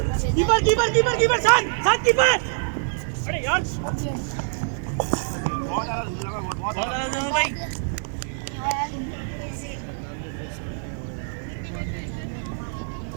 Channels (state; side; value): silent; left; digital silence